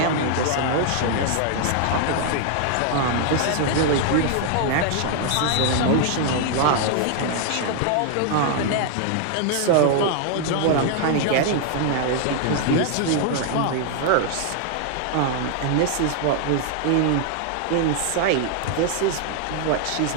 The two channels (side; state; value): both; different; correlation 0.00